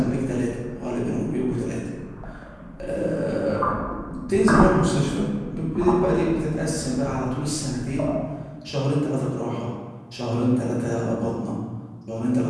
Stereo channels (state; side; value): identical; both; correlation 1.00